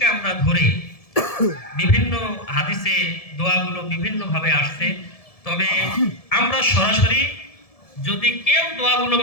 আমরা ধরে বিভিন্ন হাদিসে দোয়াগুলো বিভিন্ন ভাবে আসছে। তবে আমরা সরাসরি যদি কেউ দোয়াগুলো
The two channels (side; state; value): right; late; 1.7 ms